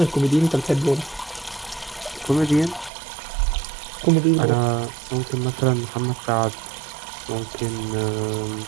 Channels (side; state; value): left; drops out; at 2.9 s